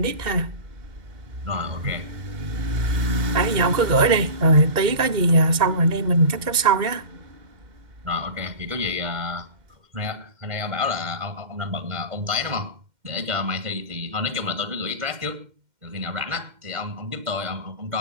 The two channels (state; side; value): late; left; 2.1 ms